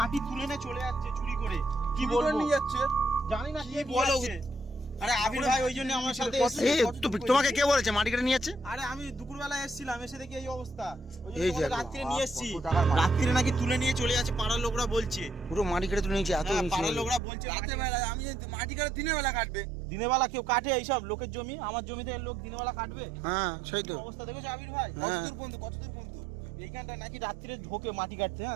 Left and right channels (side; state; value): left; drops out; at 17.2 s